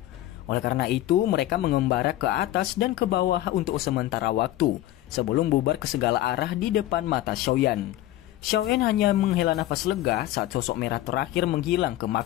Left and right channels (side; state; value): right; quieter; 14.6 dB